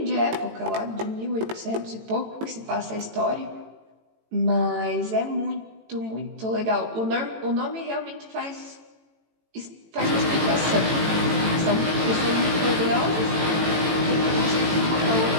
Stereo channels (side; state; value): left; late; 18 ms